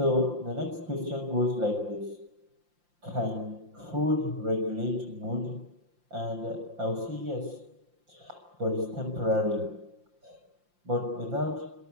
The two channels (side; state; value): left; late; 5.7 ms